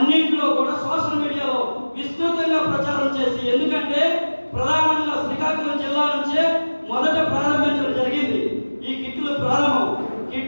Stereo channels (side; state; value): both; inverted; correlation -1.00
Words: కూడా సోషల్ మీడియాలో విస్తృతంగా ప్రచారం చేసి, ఎందుకంటే ప్రధానంగా శ్రీకాకుళం జిల్లా నుంచే మొదట ప్రారంభించడం జరిగింది. ఈ కిట్లు ప్రారంభం,